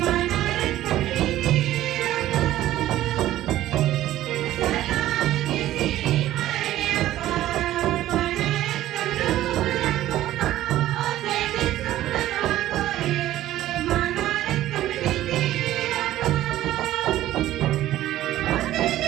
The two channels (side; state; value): left; quieter; 14.1 dB